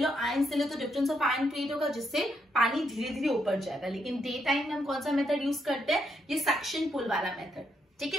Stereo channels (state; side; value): normal; both; correlation 0.77